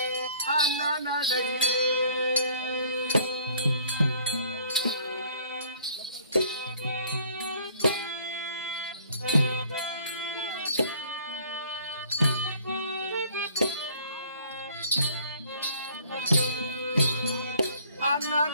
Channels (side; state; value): both; inverted; correlation -0.57